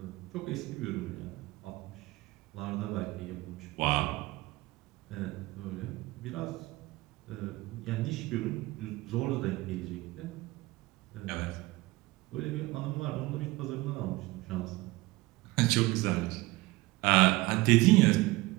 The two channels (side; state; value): left; quieter; 20.6 dB